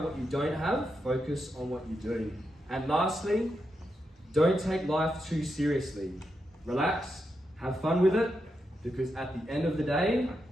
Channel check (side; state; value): both; normal; correlation 0.85